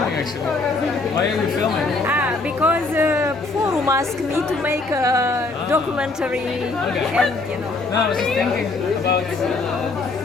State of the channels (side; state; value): right; quieter; 3.6 dB